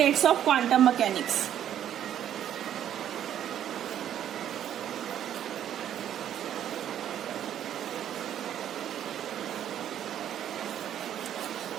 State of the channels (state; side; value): quieter; left; 10.4 dB